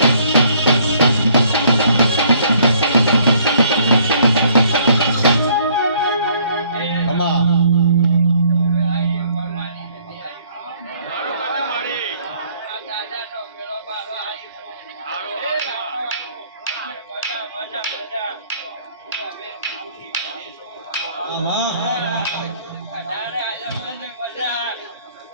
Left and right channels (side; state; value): both; inverted; correlation -0.61